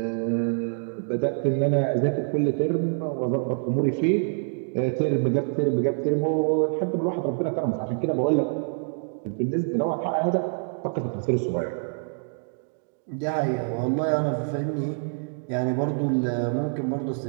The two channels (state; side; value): silent; left; digital silence